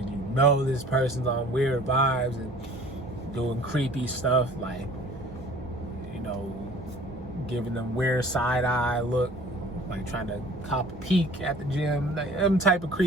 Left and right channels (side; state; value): both; normal; correlation 0.48